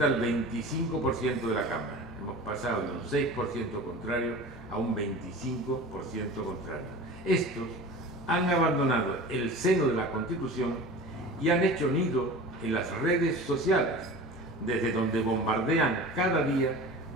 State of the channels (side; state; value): both; normal; correlation 0.36